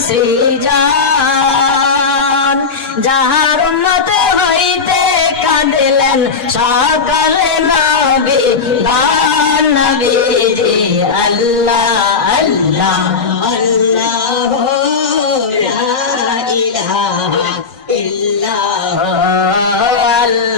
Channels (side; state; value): right; quieter; 5.1 dB